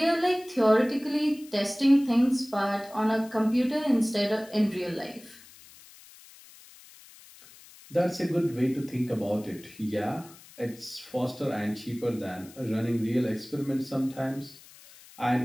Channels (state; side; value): noise; left; hiss, 22 dB below the sound